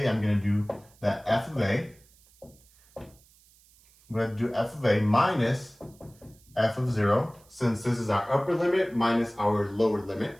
I'm going to do that f of a. I'm going to do f of a minus f of 0, since this is our upper limit minus our lower limit.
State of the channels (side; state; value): right; noise; hiss, 29 dB below the sound